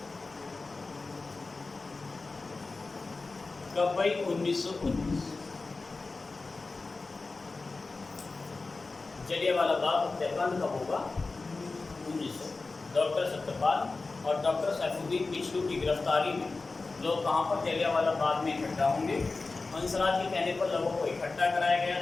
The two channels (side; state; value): right; quieter; 3.7 dB